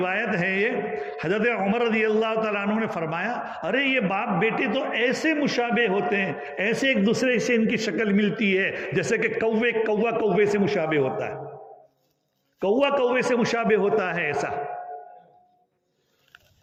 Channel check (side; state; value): both; identical; correlation 1.00